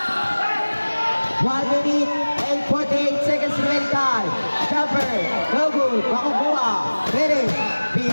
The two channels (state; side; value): inverted; both; correlation -1.00